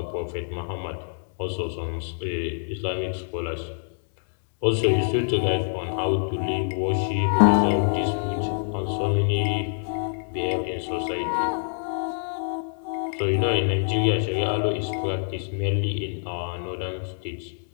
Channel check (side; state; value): right; silent; digital silence